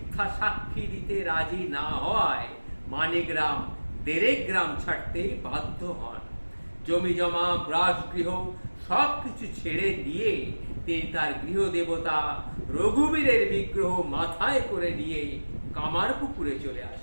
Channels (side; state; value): both; inverted; correlation -1.00